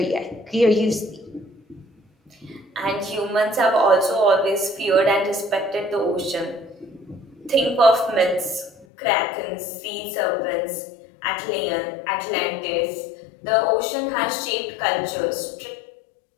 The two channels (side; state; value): right; drops out; at 8.8 s